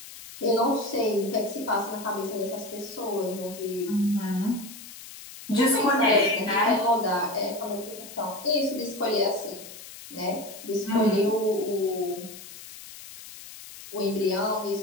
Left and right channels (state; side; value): noise; left; hiss, 15 dB below the sound